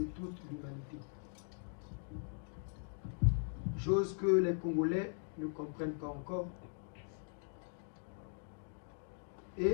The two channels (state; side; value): silent; right; 51 dB below the other